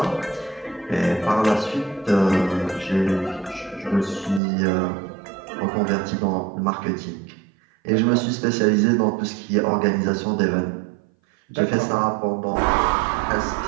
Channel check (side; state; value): left; drops out; at 4.4 s